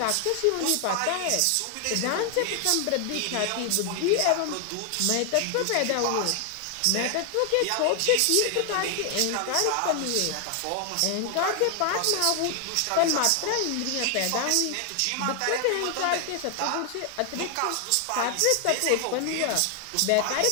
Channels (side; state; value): both; different; correlation 0.00